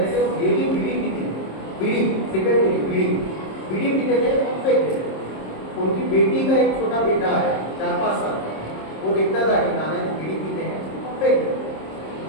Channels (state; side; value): late; right; 26 ms